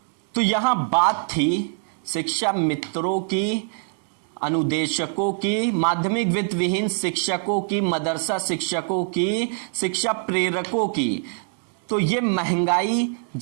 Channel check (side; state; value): left; silent; 60 dB below the other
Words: तो यहाँ बात थी शिक्षा मित्रों की, अनुदेशकों की, माध्यमिक वित्त विहीन शिक्षकों की, मदरसा शिक्षकों की, शिक्षा प्रेरकों की। तो ये महंगाई,